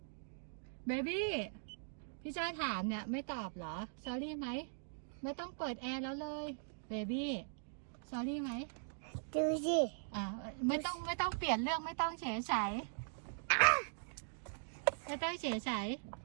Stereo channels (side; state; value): left; silent; digital silence